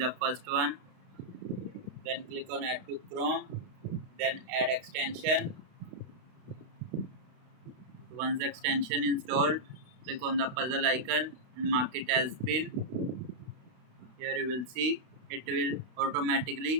first one. Then click on add to Chrome, then add extension. Once the extension installed, click on the puzzle icon and mark it as pin. Here you will see it will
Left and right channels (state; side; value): late; left; 32 ms